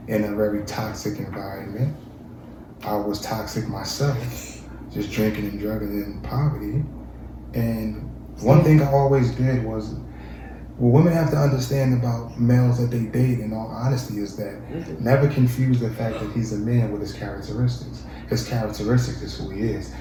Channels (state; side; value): identical; both; correlation 1.00